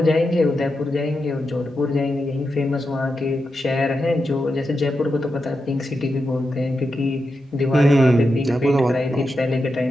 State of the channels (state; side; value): normal; both; correlation 0.88